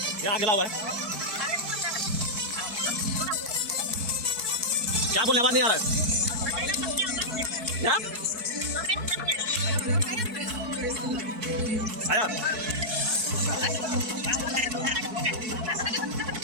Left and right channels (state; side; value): late; left; 4.6 ms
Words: क्या गिला हुआ है? क्या बोलने आवाज नहीं आ रहा है? क्या? आया?